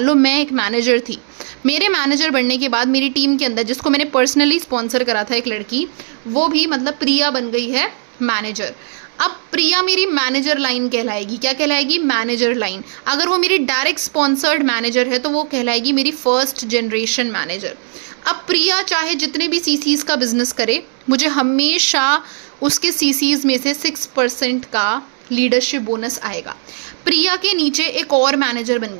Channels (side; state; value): left; silent; digital silence